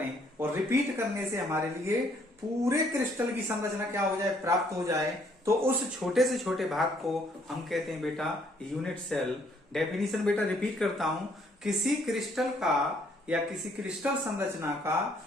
और रिपीट करने से हमारे लिए पूरे क्रिस्टल की संरचना क्या हो जाए, प्राप्त हो जाए, तो उस छोटे से छोटे भाग को हम कहते हैं बेटा यूनिट सेल। डेफिनेशन बेटा रिपीट करता हूं, किसी क्रिस्टल का या किसी क्रिस्टल संरचना का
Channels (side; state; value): both; normal; correlation 0.66